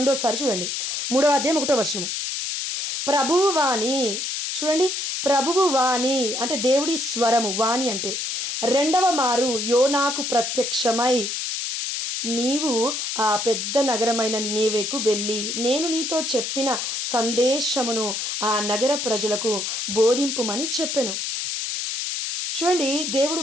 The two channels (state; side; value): noise; left; hiss, 3 dB below the sound